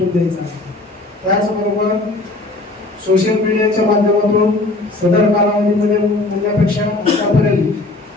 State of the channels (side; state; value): right; quieter; 3.0 dB